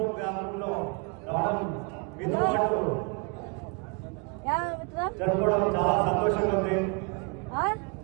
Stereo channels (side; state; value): left; quieter; 32.1 dB